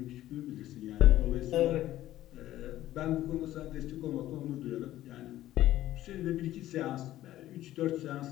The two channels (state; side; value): quieter; right; 14.2 dB